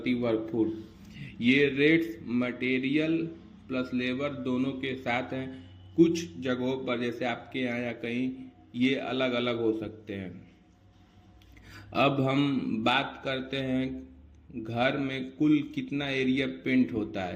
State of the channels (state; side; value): identical; both; correlation 1.00